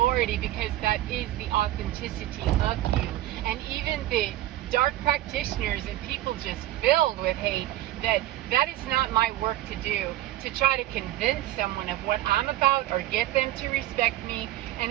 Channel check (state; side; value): quieter; left; 14.8 dB